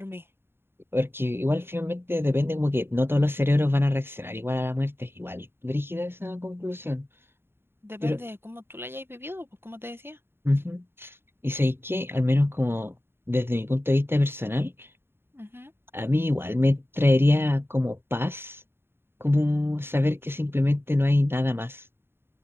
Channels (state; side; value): late; left; 0.11 ms